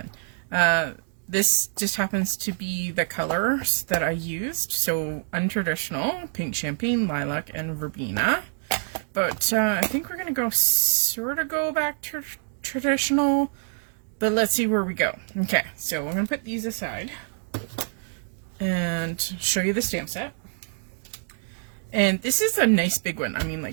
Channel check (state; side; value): silent; left; digital silence